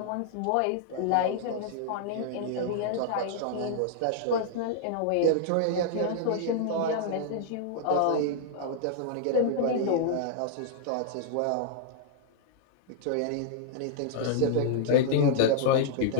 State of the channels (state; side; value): different; both; correlation -0.01